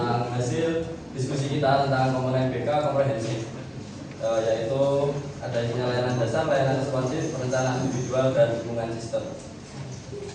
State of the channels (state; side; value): identical; both; correlation 1.00